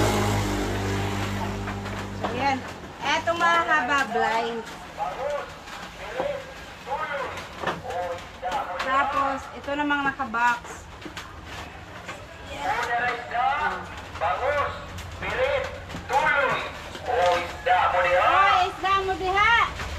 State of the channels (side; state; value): both; identical; correlation 1.00